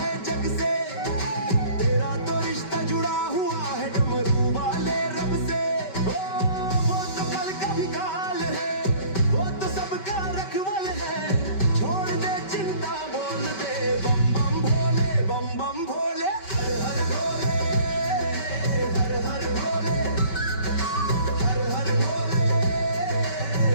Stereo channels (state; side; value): late; right; 5.2 ms